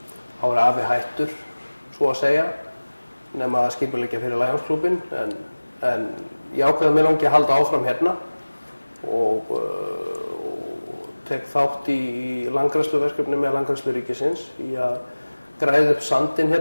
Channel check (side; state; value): both; inverted; correlation -1.00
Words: Þá var afi hættur, svo að segja, nema að skipuleggja fyrir Lionsklúbbinn, en ég ákveði að mér langi að halda áfram hérna og tek þátt í landgræðsluverkefni með Landgræðslu ríkisins í að græða upp sandinn